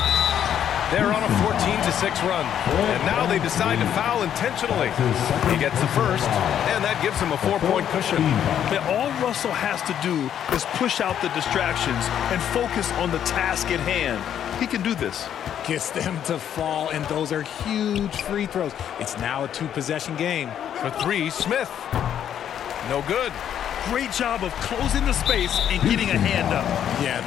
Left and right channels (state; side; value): quieter; right; 9.7 dB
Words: They're on a 14-6 run. And now they decide to foul intentionally. He gets the first, and that gives him a 4-point cushion. And all Russell has to do is push out the distractions and focus on the task at hand. He can do this. Gets them to fall, and those are huge free throws. It's now a 2-possession game. For 3, Smith. No good. Great job of closing the space and getting a hand up. Yeah,